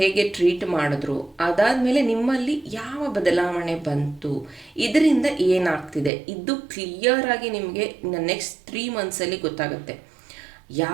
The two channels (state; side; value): drops out; left; at 6.1 s